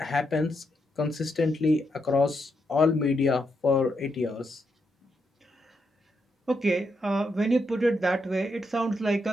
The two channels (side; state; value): both; normal; correlation 0.81